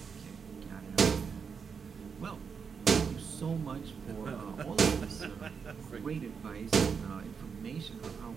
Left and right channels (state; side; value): quieter; left; 6.1 dB